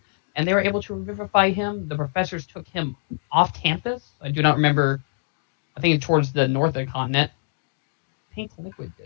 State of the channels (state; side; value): silent; right; digital silence